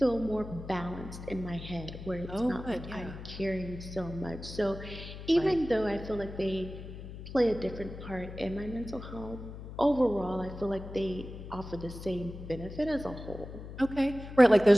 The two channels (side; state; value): left; noise; hum, 11 dB below the sound